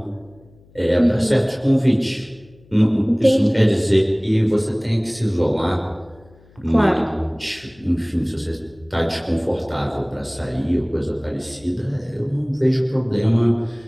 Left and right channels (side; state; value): left; noise; hum, 28 dB below the sound